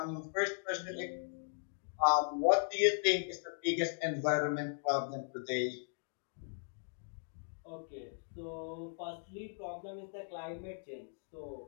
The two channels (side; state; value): right; silent; digital silence